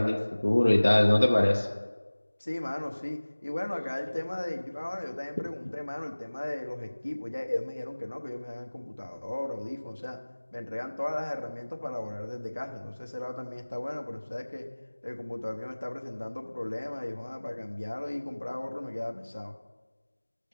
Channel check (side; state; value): both; inverted; correlation -1.00